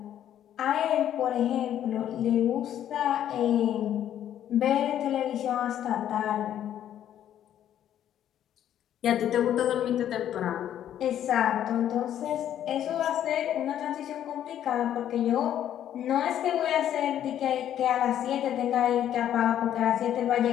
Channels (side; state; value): right; quieter; 10.8 dB